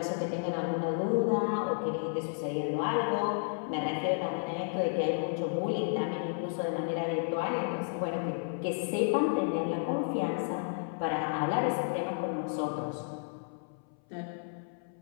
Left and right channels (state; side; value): silent; right; 56 dB below the other